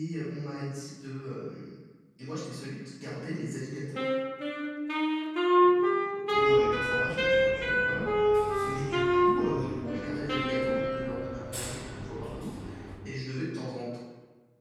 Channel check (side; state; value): both; identical; correlation 1.00